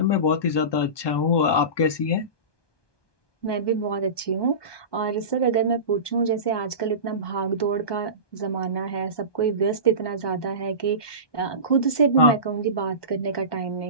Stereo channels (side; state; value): right; late; 1.2 ms